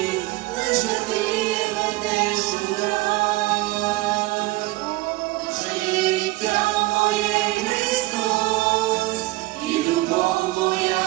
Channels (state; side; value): quieter; left; 19.6 dB